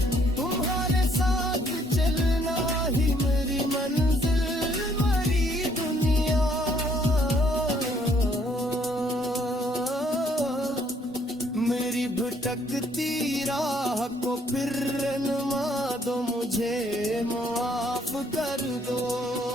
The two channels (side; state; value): both; normal; correlation 0.66